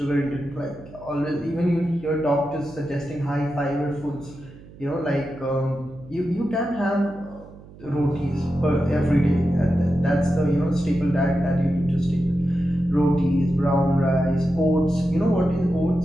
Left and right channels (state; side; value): noise; right; hum, 20 dB below the sound